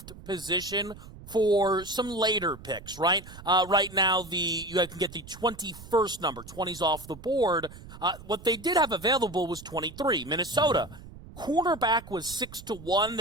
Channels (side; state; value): right; noise; rumble, 17 dB below the sound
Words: position for some later picks, right? Right now, you can get the 21st number. 20's off the board. What they did have available was 23, Minnesota. Cornerback was 6-1.